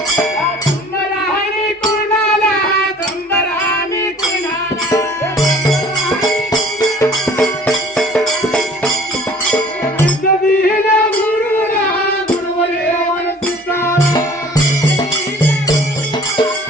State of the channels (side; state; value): both; normal; correlation 0.50